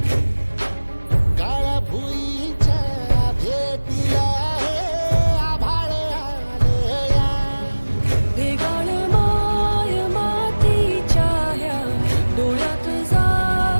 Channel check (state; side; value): inverted; both; correlation -1.00